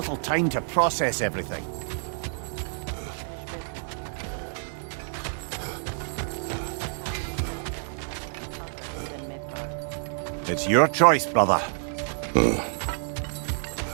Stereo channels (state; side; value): silent; left; 59 dB below the other